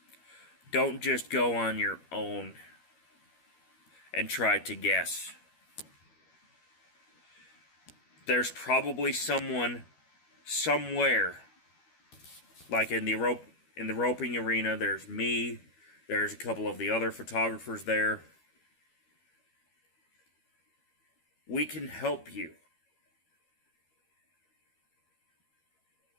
don't just go on your own and try to guess. There's probably someone somewhere, like in the roping arena. There's me. There's a couple of the other photographers there. We can help you.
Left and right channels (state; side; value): late; right; 12 ms